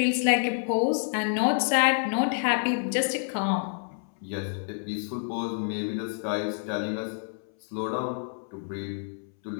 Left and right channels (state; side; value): silent; right; 59 dB below the other